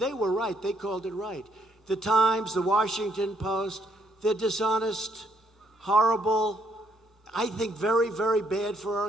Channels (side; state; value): both; normal; correlation 0.70